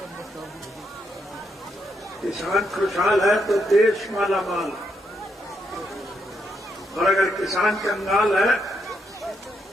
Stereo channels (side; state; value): both; normal; correlation 0.78